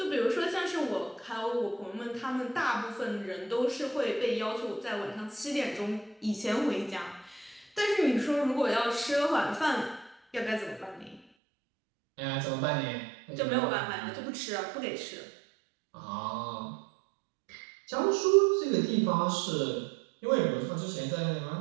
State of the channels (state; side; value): drops out; left; at 11.2 s